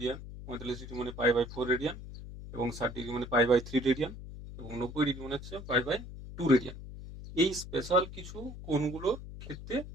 45 ডিগ্রি মানে π/4 রেডিয়ান এবং 60 ডিগ্রি মানে π/3 রেডিয়ান এবং 90 ডিগ্রি মানে হচ্ছে π/2 রেডিয়ান। এই স্পেশাল কিছু কোণগুলোর ক্ষেত্রে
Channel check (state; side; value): noise; left; hum, 12 dB below the sound